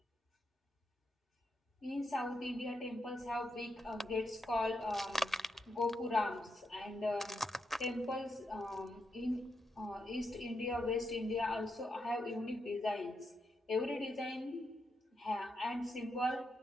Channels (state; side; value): normal; both; correlation 0.83